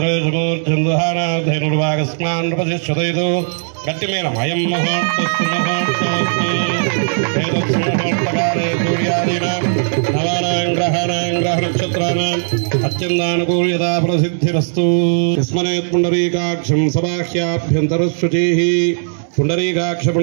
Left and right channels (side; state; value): left; silent; digital silence